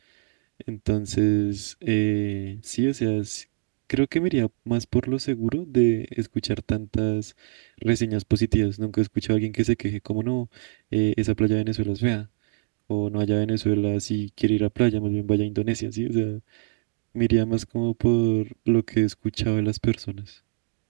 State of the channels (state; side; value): silent; left; digital silence